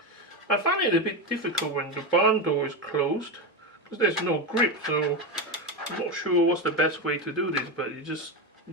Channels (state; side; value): normal; both; correlation 0.14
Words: I find it a bit difficult when the barn door is closed because there's no grip, so I'm not sure what's the best way to do this, but you just